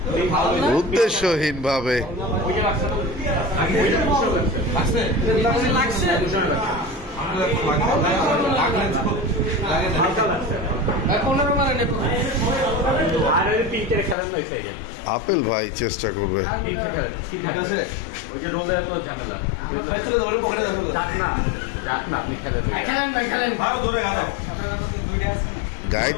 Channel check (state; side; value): drops out; right; at 14.2 s